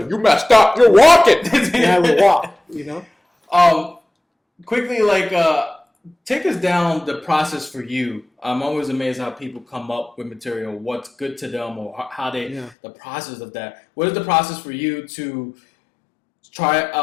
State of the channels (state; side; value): drops out; right; at 12.7 s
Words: you messed up, you're walking. And I would walk, Quickly, take us down the process for you. I'm always amazed how people come up with material, what's good to them, or how the process of that. What is the process for you to